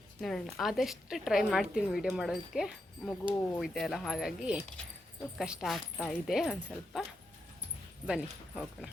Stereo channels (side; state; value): both; normal; correlation 0.84